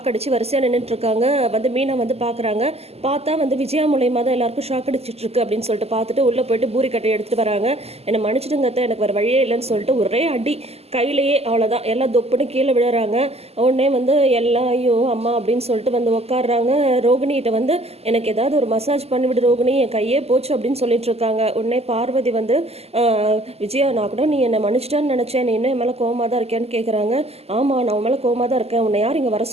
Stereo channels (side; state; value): left; late; 0.29 ms